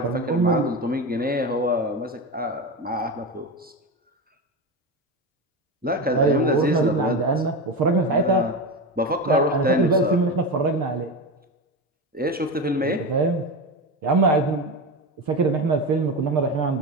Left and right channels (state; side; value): normal; both; correlation 0.20